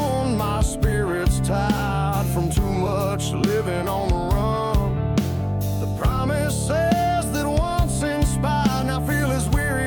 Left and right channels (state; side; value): identical; both; correlation 1.00